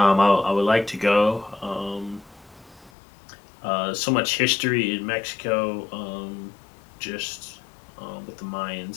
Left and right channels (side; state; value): right; drops out; at 2.9 s